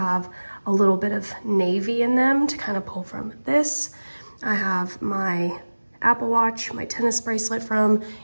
a little bit of navy in them to kind of pull from this. I have my Apple Watch, my tennis bracelet from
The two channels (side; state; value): both; inverted; correlation -1.00